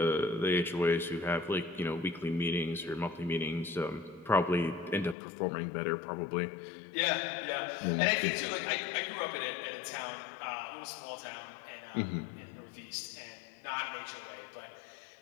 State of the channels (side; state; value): right; drops out; at 5.2 s